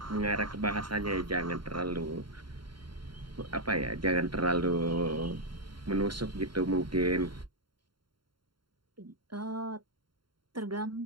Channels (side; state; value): left; late; 0.72 ms